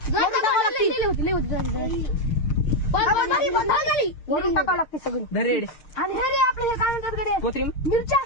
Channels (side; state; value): right; late; 6.5 ms